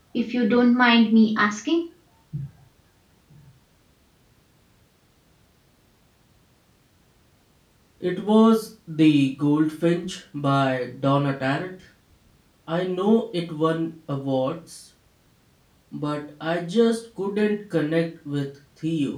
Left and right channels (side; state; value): both; identical; correlation 1.00